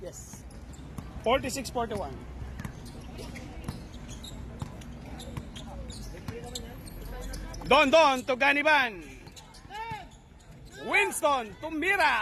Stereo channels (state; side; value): identical; both; correlation 1.00